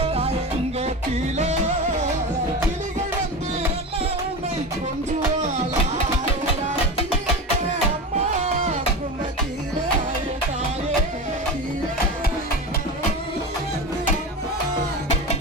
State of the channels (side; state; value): both; normal; correlation 0.26